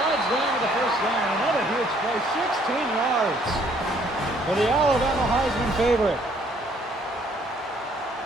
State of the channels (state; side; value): normal; both; correlation 0.63